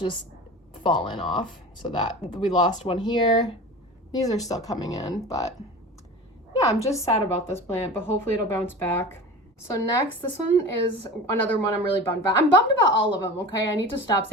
fallen off, so that we lost one here. These are still coming in, but yeah, I'm just sad about this plant, but hopefully it'll bounce back. So next, this one is another one I'm really bummed about. I'm bummed about all of them, okay? I need to stop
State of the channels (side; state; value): both; normal; correlation 0.34